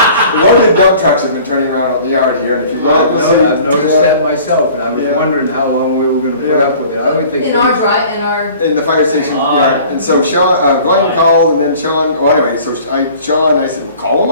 One of the dump trucks have been turning around out in the yard here, and if you let it see. I've noticed that myself, and I was Yeah. wondering how long we were gonna put Yeah. up with it. I would think. In our, In the fire station yard, and so Sean, Glenn called, and then Sean, well, anyway, so I said, well, call him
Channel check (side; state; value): both; inverted; correlation -0.48